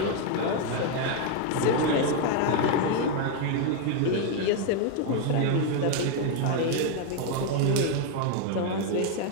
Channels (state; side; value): different; both; correlation 0.01